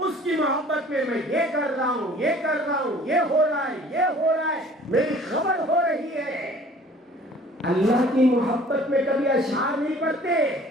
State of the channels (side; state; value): both; normal; correlation 0.51